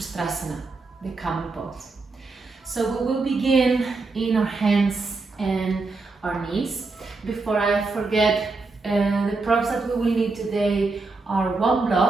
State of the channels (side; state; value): left; quieter; 3.7 dB